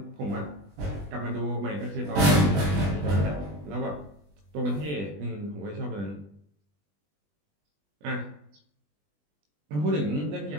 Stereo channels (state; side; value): late; left; 20 ms